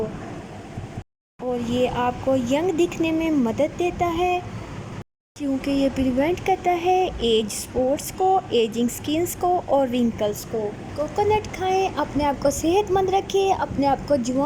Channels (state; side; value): identical; both; correlation 1.00